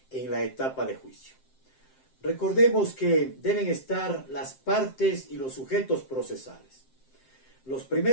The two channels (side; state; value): right; late; 7.6 ms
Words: en la etapa de juicio? Recordemos que deben estar las partes y los sujetos procesales. Los